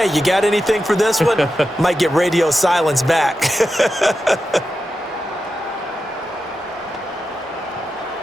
you got anything for this one? Might get radio silence back.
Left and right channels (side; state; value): both; normal; correlation 0.90